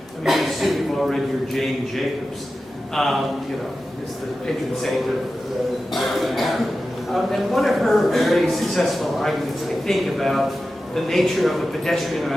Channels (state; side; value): normal; both; correlation 0.93